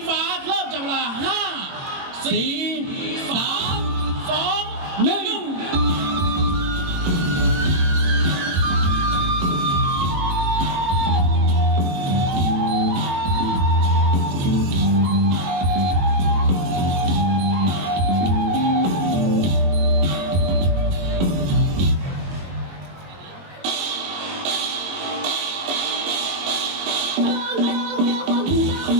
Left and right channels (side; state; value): left; late; 21 ms